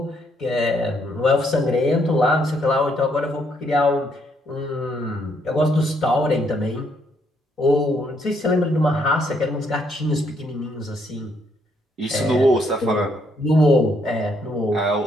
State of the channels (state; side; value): normal; both; correlation 0.72